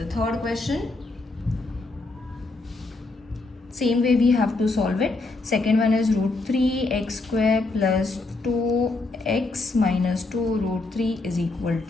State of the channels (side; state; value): right; quieter; 3.3 dB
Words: third question, same way we have to solve it. Second one is root 3x square plus 2x minus 2 root 3 is equal